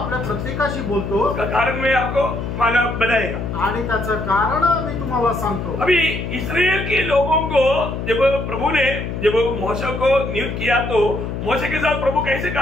प्रत्येकाशी बोलतो। उसका कारण मैं आपको मालूम बताएगा आणि त्याचं कारण मी तुम्हाला सांगतो। अभी इस्राएल के लोगों को जब प्रभु ने जब मोशे को नियुक्त किया तो मोशे के साथ प्रभु कैसे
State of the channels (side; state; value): left; noise; hum, 5 dB below the sound